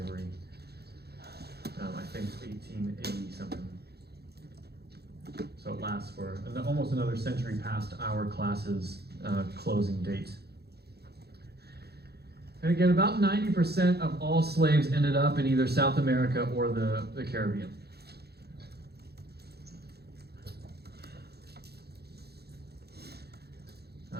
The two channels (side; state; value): left; late; 0.47 ms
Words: I think it's 1880 something. So it lasts for almost another century past our class's closing date. And again, about 90% of all slaves ended up in either South America or the Caribbean.